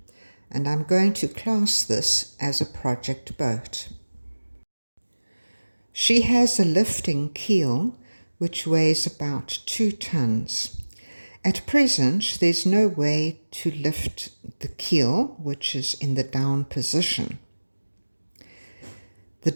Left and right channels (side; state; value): both; inverted; correlation -1.00